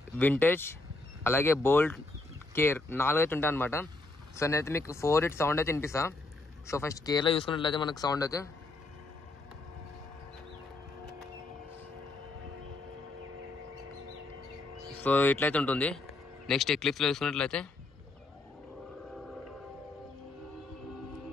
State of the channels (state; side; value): quieter; right; 3.0 dB